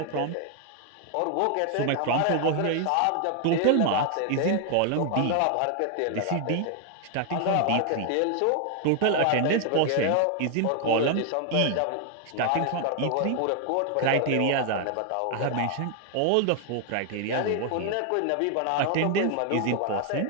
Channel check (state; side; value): different; both; correlation 0.00